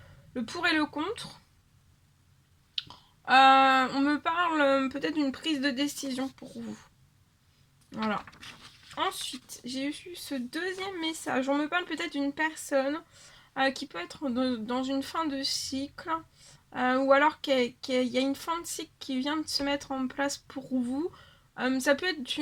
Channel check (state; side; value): identical; both; correlation 1.00